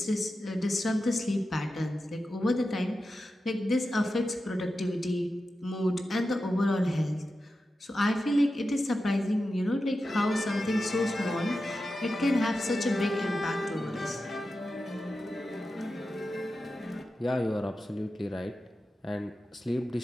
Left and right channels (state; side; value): normal; both; correlation 0.91